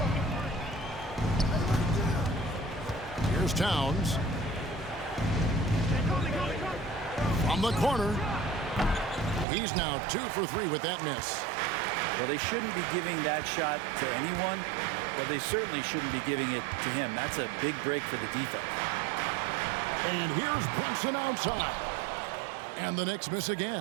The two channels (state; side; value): drops out; left; at 9.5 s